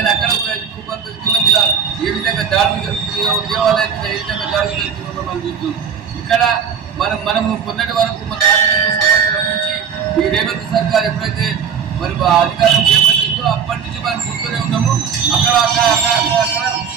అక్కడ కూడా హిందువుల మీద ఏ విధంగా దాడులు జరుగుతున్నాయో, దేవాలయం మీద ఏ విధంగా దాడులు జరుగుతున్నాయో మనం చూస్తున్నాం. ఇక్కడ మనము కొన్నటి వరకు మన సంవత్సరం నుంచి ఈ రేవంత్ సర్కార్ ఎప్పుడైతే మరి అధికారం చేపట్టిందో అప్పటి నుంచి మనం చూస్తూనే ఉన్నాము. అక్కడ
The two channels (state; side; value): quieter; left; 7.0 dB